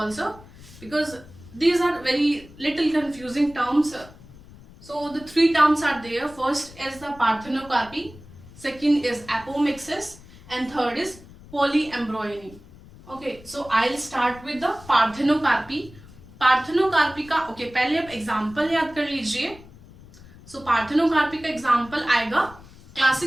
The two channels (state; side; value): noise; left; rumble, 21 dB below the sound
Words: because these are very little confusing terms. So the 3 terms are there. First is the parthenocarpy, second is apomixis, and third is polyembryony. Okay, so I'll start with the parthenocarpy. Parthenocarpy का okay पहले आप example याद कर लीजिए. सो parthenocarpy का example आएगा,